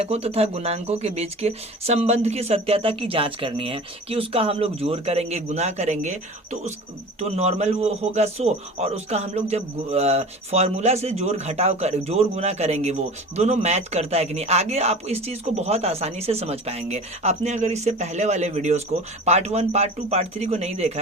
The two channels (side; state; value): both; normal; correlation 0.37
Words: तथा गुणांकों के बीच के संबंध की सत्यता की जाँच करनी है कि उसका हम लोग जोड़ करेंगे, गुना करेंगे तो नॉर्मल वो होगा 100, और उसका हम लोग जब फॉर्मूला से जोड़ गुना करेंगे वो दोनों मैच करता है कि नहीं। आगे आप इस चीज़ को बहुत आसानी से समझ पाएंगे। आपने अगर इससे पहले वाले वीडियोस को पार्ट 1, पार्ट 2, पार्ट 3 को नहीं देखा